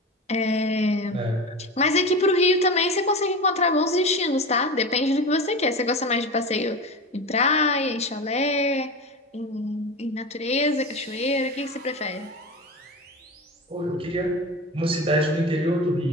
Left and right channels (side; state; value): both; normal; correlation 0.27